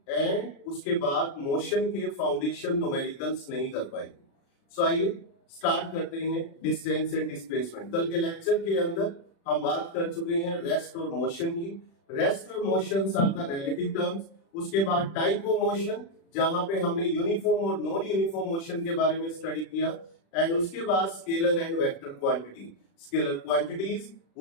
एंड उसके बाद मोशन के फाउंडेशन न्यूमेरिकल्स नहीं कर पाएंगे। सो आइए स्टार्ट करते हैं डिस्टेंस एंड डिस्प्लेसमेंट। कल के लेक्चर के अंदर हम बात कर चुके हैं रेस्ट और मोशन की। रेस्ट और motion are the relative terms. उसके बाद टाइप ऑफ मोशन, जहां पे हमने यूनिफॉर्म और नॉन यूनिफॉर्म मोशन के बारे में स्टडी किया। एंड उसके बाद scalar and vector quantity. Scalar quantities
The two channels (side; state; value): right; late; 36 ms